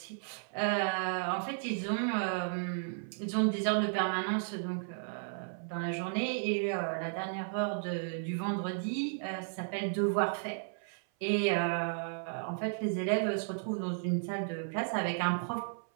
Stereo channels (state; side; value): silent; left; 55 dB below the other